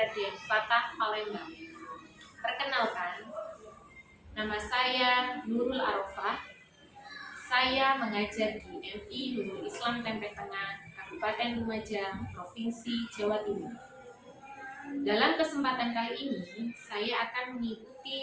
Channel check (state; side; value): identical; both; correlation 1.00